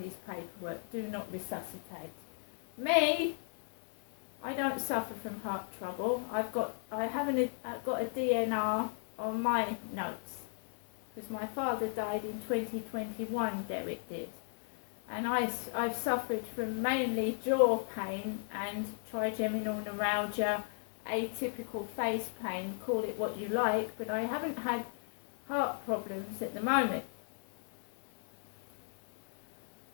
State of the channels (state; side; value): silent; right; 54 dB below the other